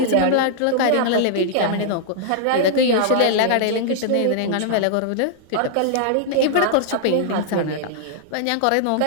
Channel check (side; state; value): both; different; correlation -0.01